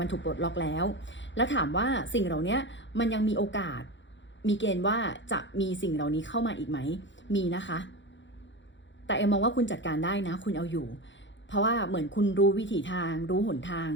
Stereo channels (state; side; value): late; right; 0.54 ms